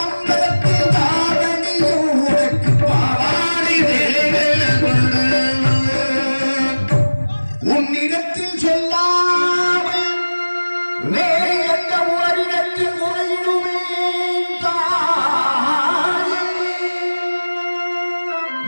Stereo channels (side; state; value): both; inverted; correlation -1.00